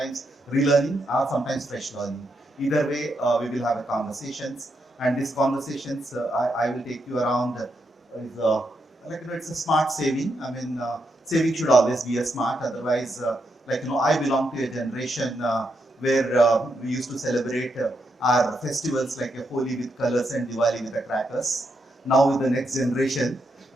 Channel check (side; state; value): both; normal; correlation 0.82